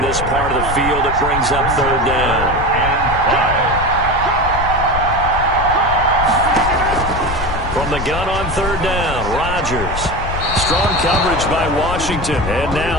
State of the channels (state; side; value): noise; left; rumble, 6 dB below the sound